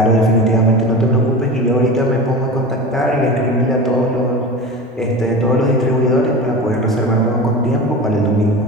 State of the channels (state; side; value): normal; both; correlation 0.30